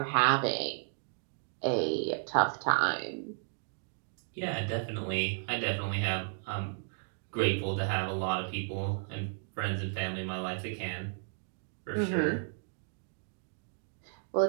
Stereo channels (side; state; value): left; silent; digital silence